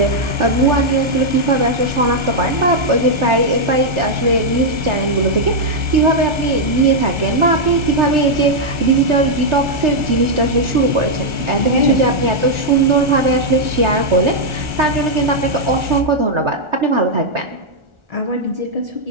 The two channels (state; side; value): late; left; 1.4 ms